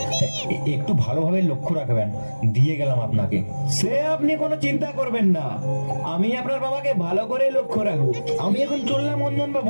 একটু ভালোভাবে লক্ষ্য রাখবেন, দিয়ে গেলাম আপনাকে। সে আপনি কোনো চিন্তা করবেন না, আমি আপনার বাবাকে ভালো করে লক্ষ্য রাখবো। আমি এখন চললাম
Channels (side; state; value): both; inverted; correlation -1.00